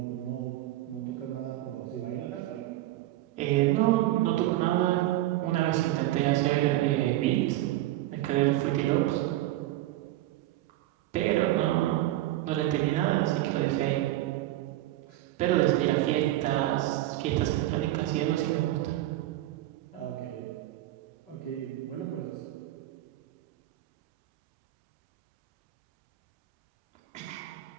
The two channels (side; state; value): left; quieter; 15.6 dB